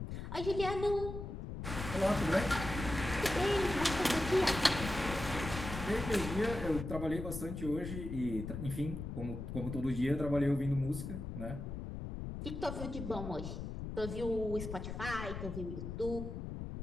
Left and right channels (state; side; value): noise; left; rumble, 6 dB below the sound